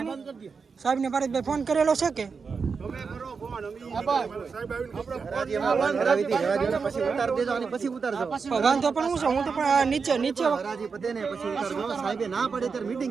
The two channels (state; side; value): quieter; left; 5.3 dB